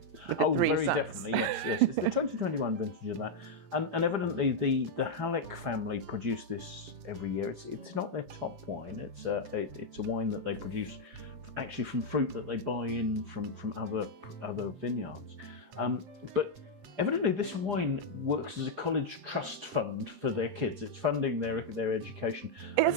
Oh, very definitely, yes. It's the 2021 vintage of that. And evidently the Halleck family produce this every year. It's not their top wine. It's a wine that they produce actually from fruit that they buy in from other vineyards. But evidently this wine works as a college trust fund for their kids. It's funding their education. And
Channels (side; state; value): left; late; 7.9 ms